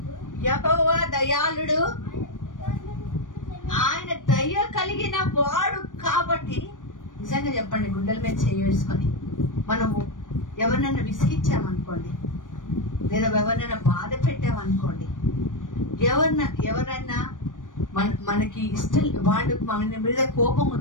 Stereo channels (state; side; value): late; right; 0.88 ms